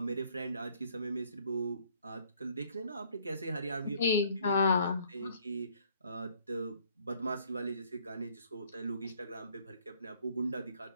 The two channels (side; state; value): both; inverted; correlation -0.62